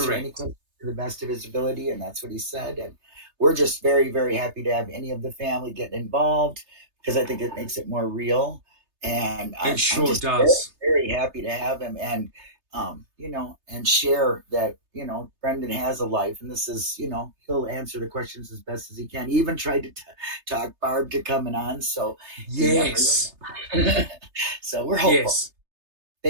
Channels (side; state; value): left; late; 3.3 ms